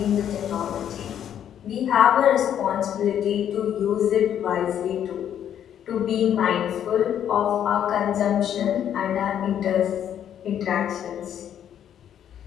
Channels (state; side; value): quieter; right; 9.8 dB